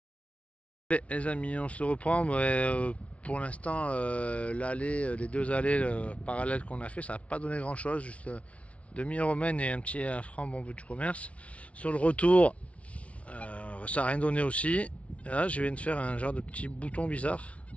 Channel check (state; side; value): late; right; 0.064 ms